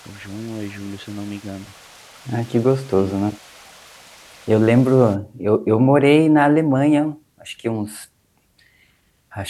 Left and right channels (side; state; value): both; identical; correlation 1.00